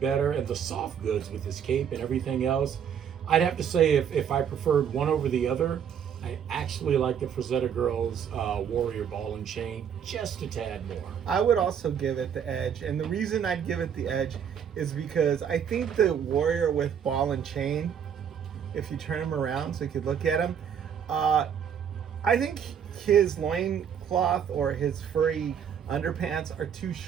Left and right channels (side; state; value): left; quieter; 8.1 dB